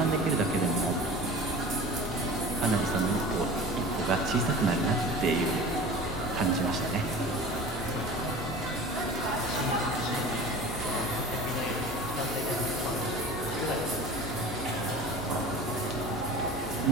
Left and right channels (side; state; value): both; normal; correlation 0.38